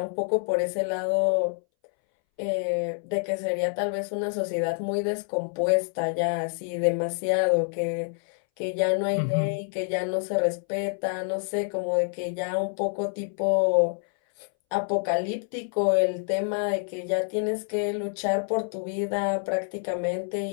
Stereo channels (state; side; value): silent; right; 60 dB below the other